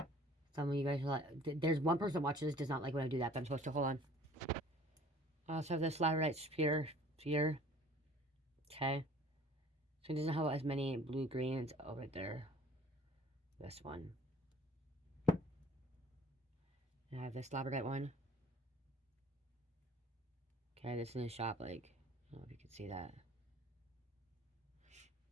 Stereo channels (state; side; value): normal; both; correlation 0.51